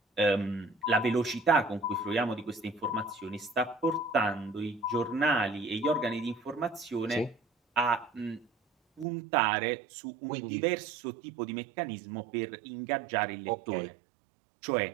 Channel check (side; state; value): left; drops out; at 9.1 s